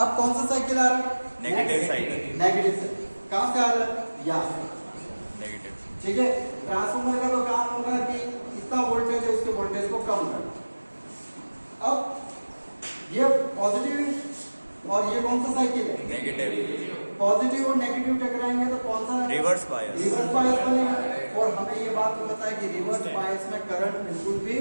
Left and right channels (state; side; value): inverted; both; correlation -1.00